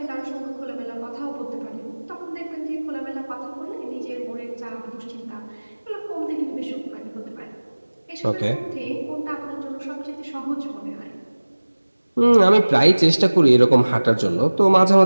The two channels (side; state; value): both; inverted; correlation -1.00